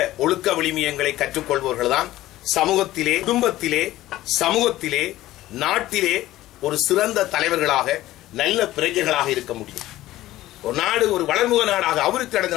ஒழுக்க விழுமியங்களை கற்றுக்கொள்பவர்கள் தான் சமூகத்திலே, குடும்பத்திலே, சமூகத்திலே, நாட்டிலே ஒரு சிறந்த தலைவர்களாக நல்ல பிரஜைகளாக இருக்க முடியும். ஒரு நாடு ஒரு வளர்முக நாடாக, அபிவிருத்தி அடைந்த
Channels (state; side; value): quieter; right; 15.6 dB